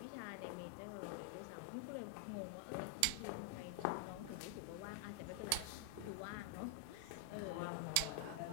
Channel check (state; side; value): different; both; correlation 0.00